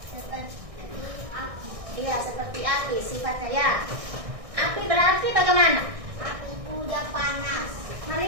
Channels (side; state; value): left; late; 1.6 ms